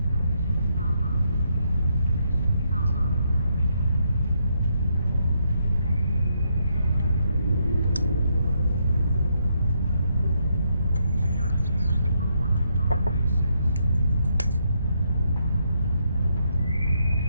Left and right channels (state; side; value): inverted; both; correlation -0.77